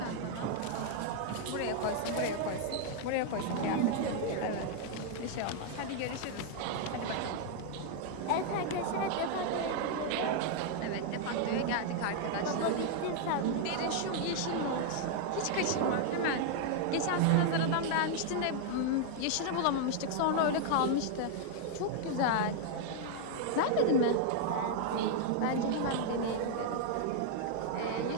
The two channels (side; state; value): both; different; correlation 0.00